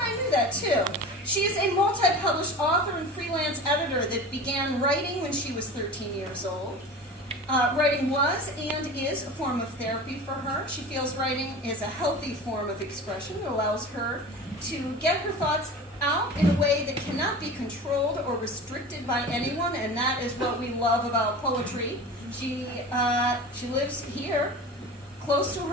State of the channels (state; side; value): normal; both; correlation 0.34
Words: knew that too. She is a multi-published author and freelance editor that began writing when she was 13 years old. Writing was and is a form of therapy for her. She feels writing is a healthy form of expression that allows her to get her thoughts out in a way that cannot be controlled or restricted by anyone, and that is what we love about poetry. She lives here, close to